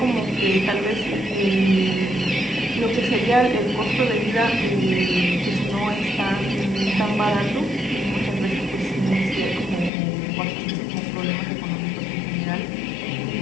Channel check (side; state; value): right; drops out; at 9.9 s